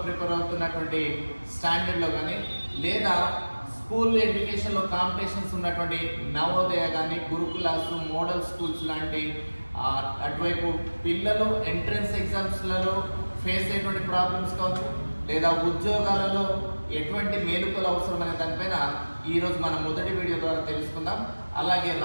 ప్రిపేర్ అవుతున్నటువంటి స్టాండర్డ్లో కానీ, లేదా స్కూల్ ఎడ్యుకేషన్లో కాంపిటీషన్స్ ఉన్నటువంటి నవోదయ కానీ, గురుకులాస్, మోడల్ స్కూల్స్ లాంటి అటువైపు పిల్లలు ఎంట్రన్స్ ఎగ్జామ్స్లలో ఫేస్ అయ్యేటువంటి ప్రాబ్లమ్స్ కావచ్చు, లేదా ఉద్యోగాలలో ఎటువంటి మేలుకలు అవసరం అనే దానిపైన ఈరోజు మన మొదటి వీడియో ద్వారా తెలుసుకుందాం. అలాగే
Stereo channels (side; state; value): both; inverted; correlation -1.00